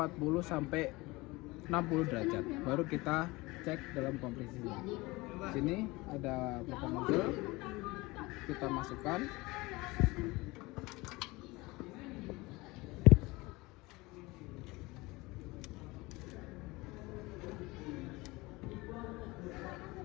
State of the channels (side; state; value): right; quieter; 22.4 dB